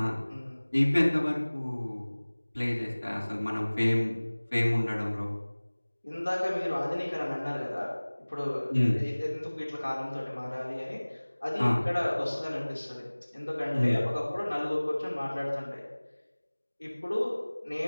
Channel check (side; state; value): both; inverted; correlation -1.00